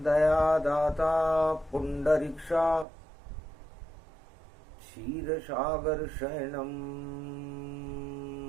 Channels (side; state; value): left; drops out; at 2.9 s